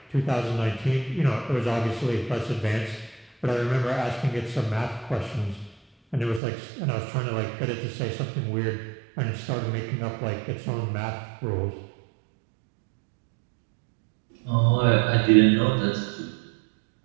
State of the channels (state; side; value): drops out; left; at 6.4 s